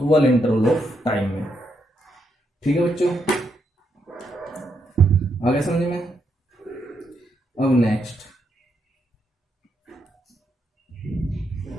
इंटरवल ऑफ टाइम में। ठीक है बच्चों, आगे समझ में? अब नेक्स्ट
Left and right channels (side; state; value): both; normal; correlation 0.79